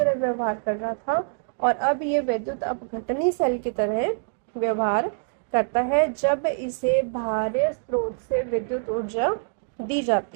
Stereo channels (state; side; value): silent; left; digital silence